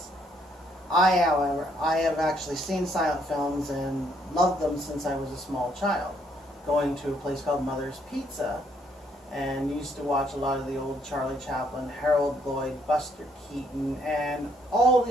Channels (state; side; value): normal; both; correlation 0.70